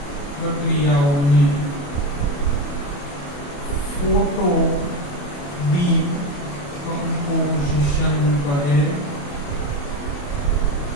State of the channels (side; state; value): right; late; 28 ms